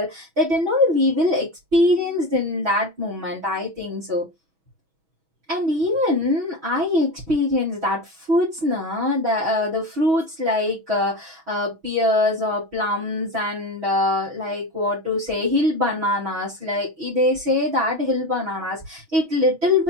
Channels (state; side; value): late; left; 6.2 ms